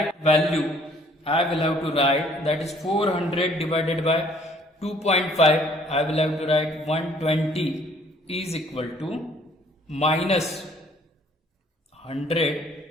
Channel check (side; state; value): both; normal; correlation 0.59